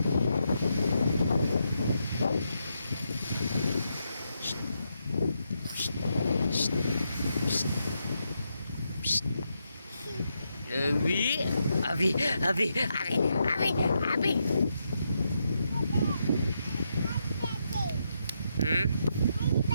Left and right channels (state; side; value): inverted; both; correlation -0.82